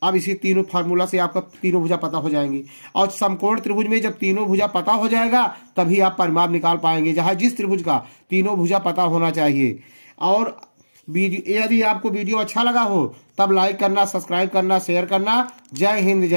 अब इसी तीनों फार्मूला से आपका तीनों भुजा पता हो जाएंगी, और समकोण त्रिभुज में जब तीनों भुजा पता हो जाएगा तभी आप परिमाप निकाल पाएंगे, जहां जिस त्रिभुज का तीनों भुजा पता होना चाहिए। और यदि आपको वीडियो अच्छा लगा हो तब लाइक करना, सब्सक्राइब करना, शेयर करना। जय हिंद,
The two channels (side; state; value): both; inverted; correlation -1.00